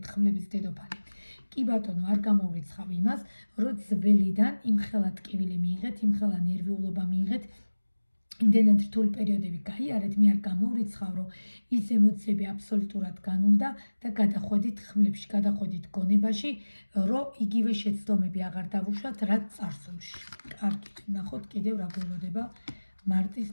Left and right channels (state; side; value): inverted; both; correlation -1.00